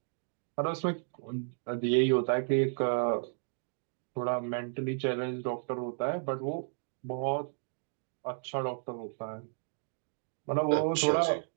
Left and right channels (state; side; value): silent; left; digital silence